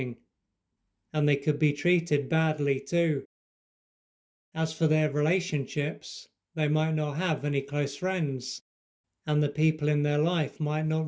and they could be treated badly too. As for their relationships, they might not have any close friends, and the people in their life might not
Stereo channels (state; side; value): identical; both; correlation 1.00